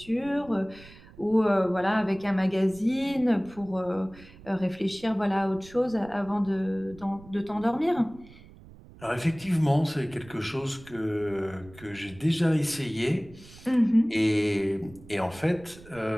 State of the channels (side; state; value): right; noise; rumble, 21 dB below the sound